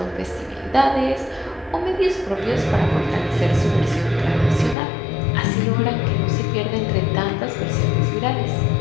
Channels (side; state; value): right; drops out; at 4.8 s